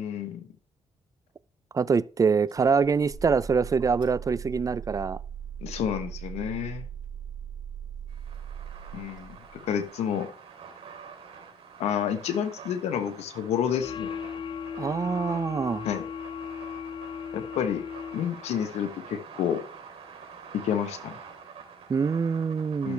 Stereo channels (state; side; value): normal; both; correlation 0.62